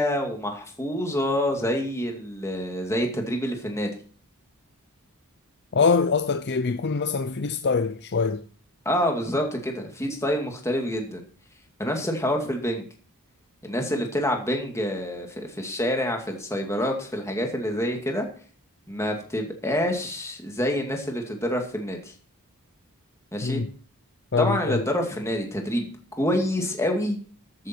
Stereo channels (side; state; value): both; normal; correlation 0.43